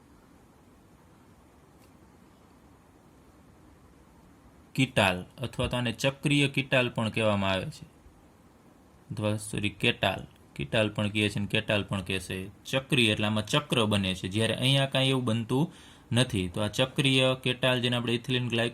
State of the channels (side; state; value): both; identical; correlation 1.00